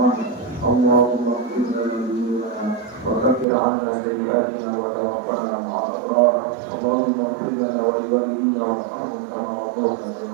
Allahumma ighfir lana wa kaffir 'anna sayyi'atina wa tawaffana ma'al abrar. Allahumma ighfir lana wa liwalidina warhamhum kama rabbayana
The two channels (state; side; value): drops out; left; at 3.5 s